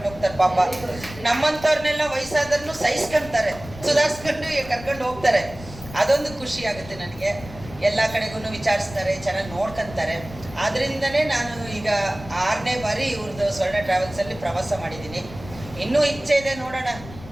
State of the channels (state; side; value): noise; left; rumble, 16 dB below the sound